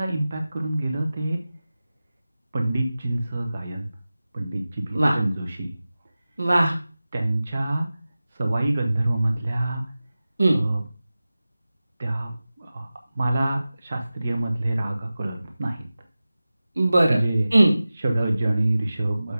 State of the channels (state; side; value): inverted; both; correlation -0.96